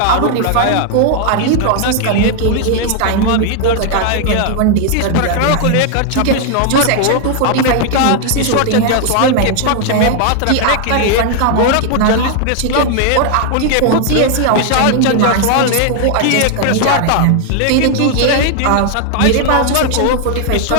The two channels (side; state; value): both; different; correlation 0.00